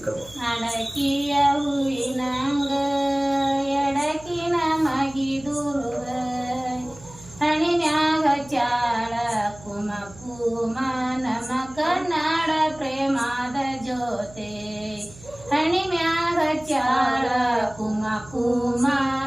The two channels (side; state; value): right; noise; hum, 20 dB below the sound